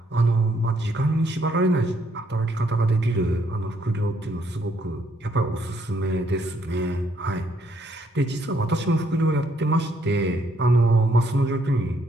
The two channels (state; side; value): normal; both; correlation 0.71